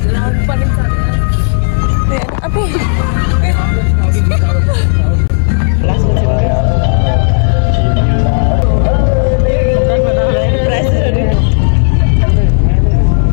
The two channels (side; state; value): right; silent; digital silence